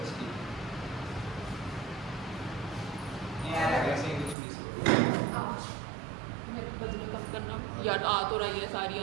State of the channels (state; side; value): drops out; left; at 4.4 s